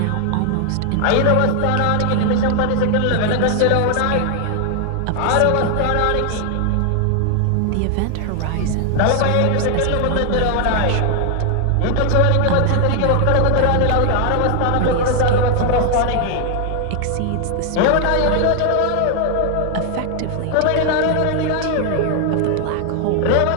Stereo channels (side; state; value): both; different; correlation 0.00